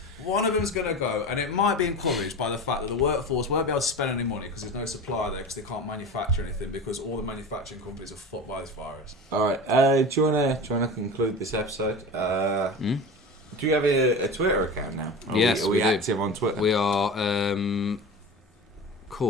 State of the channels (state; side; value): normal; both; correlation 0.31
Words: go. And it might be encouraged by the fact that the workforce won't be able to spend any money because there's no supply there because they can't manufacture anything because all the manufacturing companies are fucked by this virus. Alright, do you wanna conclude this episode? Do you have a Twitter account now? Yes, are we we do. active on Twitter? We are